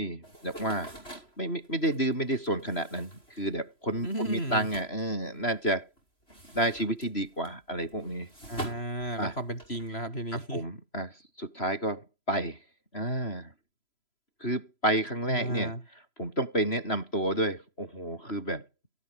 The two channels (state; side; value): late; right; 3.0 ms